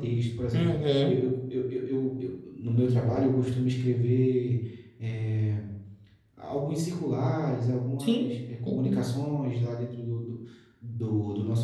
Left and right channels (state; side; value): identical; both; correlation 1.00